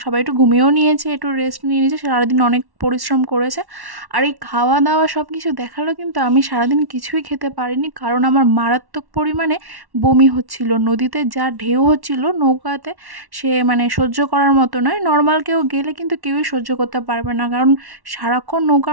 সবাই একটু ঘুমিয়েও নিয়েছে, একটু রেস্ট নিয়ে নিয়েছে, সারাদিন অনেক পরিশ্রম করেছে। আর এই খাওয়া দাওয়া সব কিছু দেখালো, কিন্তু আমি সারাদিন কিছুই খেতে পারিনি, কারণ আমার মারাত্মক পরিমাণে বমি হচ্ছিল। নদীতে যা ঢেউ হচ্ছিল নৌকাতে, সে মানে সহ্য করার মতো নয়। নর্মাল কেউ গেলে কিন্তু কেউই সহ্য করতে পারবে না, কারণ সারাক্ষণ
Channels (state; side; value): late; left; 1.1 ms